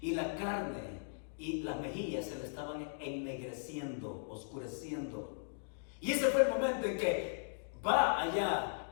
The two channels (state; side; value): silent; right; digital silence